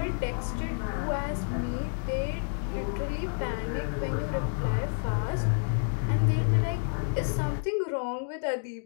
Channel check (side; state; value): right; silent; digital silence